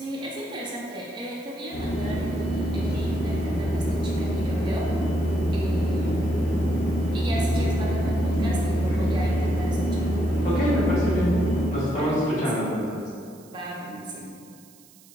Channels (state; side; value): noise; right; hiss, 25 dB below the sound